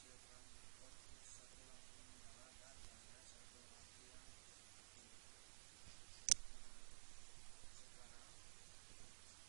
output satu lampu menyala dan hanya satu lampu yang mati. Nah, sekarang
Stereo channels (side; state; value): left; silent; digital silence